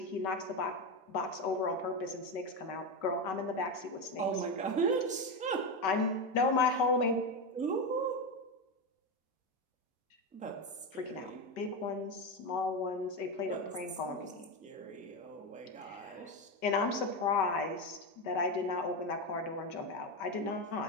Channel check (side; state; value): both; normal; correlation 0.14